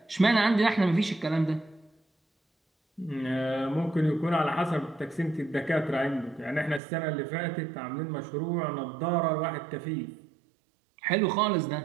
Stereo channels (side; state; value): left; drops out; at 6.8 s